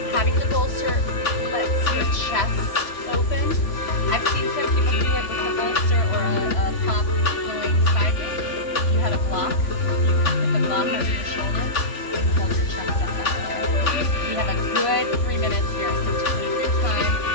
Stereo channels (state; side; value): late; right; 3.5 ms